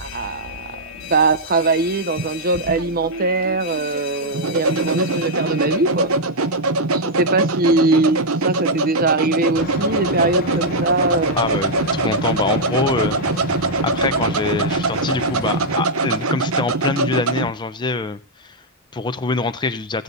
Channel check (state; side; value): normal; both; correlation -0.04